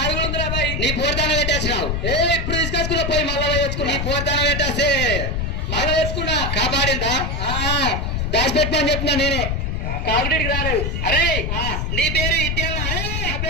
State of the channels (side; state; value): left; noise; rumble, 1 dB below the sound